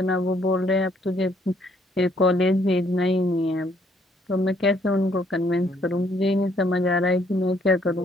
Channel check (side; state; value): both; normal; correlation 0.67